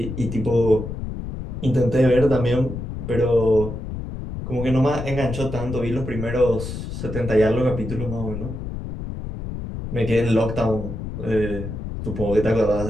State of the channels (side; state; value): left; noise; rumble, 7 dB below the sound